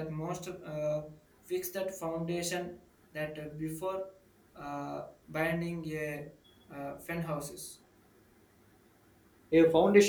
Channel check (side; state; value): both; identical; correlation 1.00